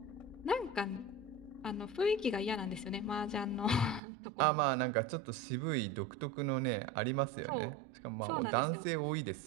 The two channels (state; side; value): drops out; left; at 4.0 s